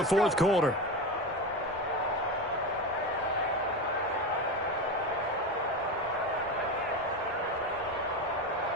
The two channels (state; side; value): normal; both; correlation 0.20